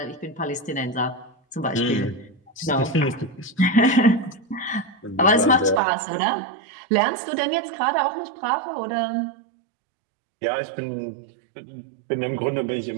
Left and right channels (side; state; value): left; drops out; at 5.8 s